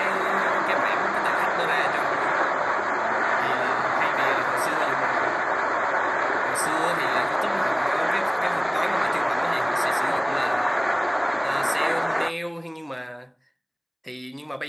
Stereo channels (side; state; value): both; identical; correlation 1.00